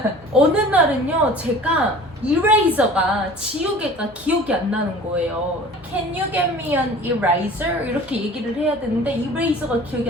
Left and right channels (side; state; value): both; normal; correlation 0.44